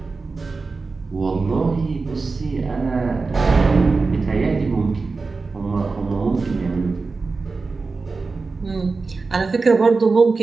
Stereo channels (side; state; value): left; quieter; 4.1 dB